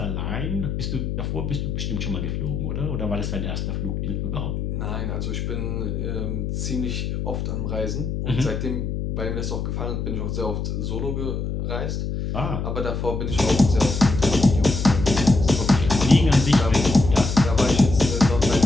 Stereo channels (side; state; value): left; noise; hum, 3 dB below the sound